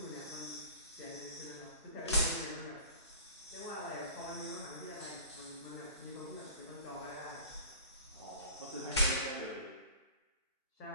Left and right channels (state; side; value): inverted; both; correlation -0.42